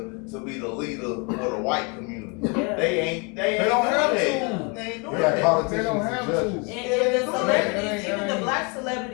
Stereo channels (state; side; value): quieter; right; 32.4 dB